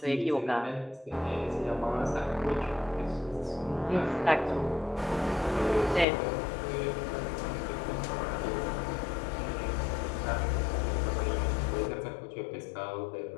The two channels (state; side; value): drops out; right; at 6.1 s